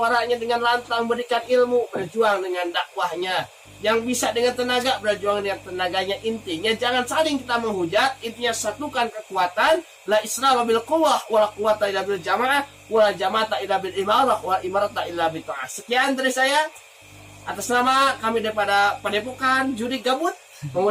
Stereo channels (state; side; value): identical; both; correlation 1.00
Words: dengan lantang berikan ilmu, berjuang dengan dakwahnya. Yang bisa dengan tenaga, berjuang dengan tenaganya. Intinya jangan saling kita menghujat, intinya satukan kekuatan. La isra bil quwwah wa la quwwata illa bil jamaah wa la jama'ata illa bil imarah wa imarata illa bi ta'ah. Sekian dari saya atas nama kami daripada Padepokan Judi Gabut